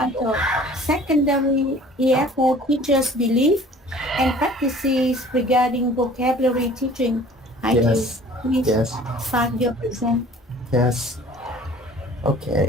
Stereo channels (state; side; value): normal; both; correlation 0.49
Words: Secondary EFL Teachers' Belief and Practices Regarding Vocabulary Teaching. Hải Triều, Yes. please Yes. start your present. Yes.